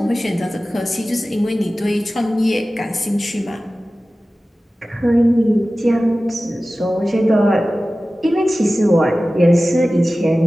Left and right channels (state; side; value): normal; both; correlation 0.96